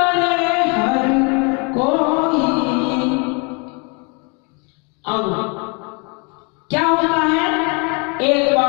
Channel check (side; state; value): right; quieter; 33.4 dB